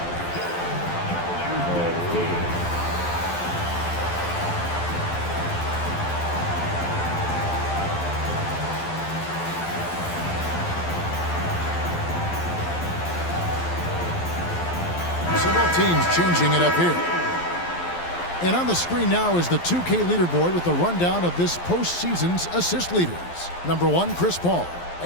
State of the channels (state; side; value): late; right; 12 ms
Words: Several teams changing it up here. And on the screen now is the 2K leaderboard with the rundown of this postseason's assist leaders. Number 1, Chris Paul.